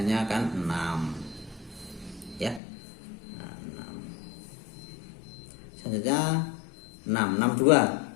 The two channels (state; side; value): drops out; right; at 2.6 s